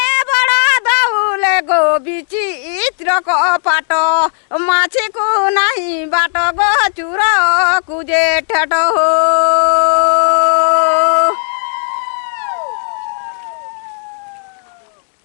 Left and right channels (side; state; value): right; silent; 59 dB below the other